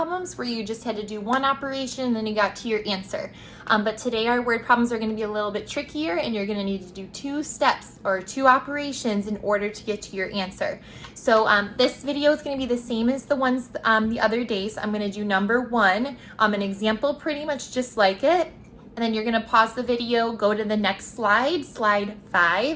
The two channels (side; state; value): both; identical; correlation 1.00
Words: where you just had to do one operation and then you got to your answer. But today our word problems are going to be a little bit trickier and you're going to need to do two steps or two operations in order to get to your answer. So this video is going to be the same as the ones the other days. I'm going to do number one, an example pretty much just like it. And then you're going to pause the video, go to the next slide, slide